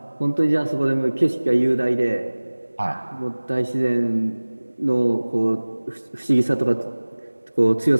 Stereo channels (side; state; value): both; inverted; correlation -1.00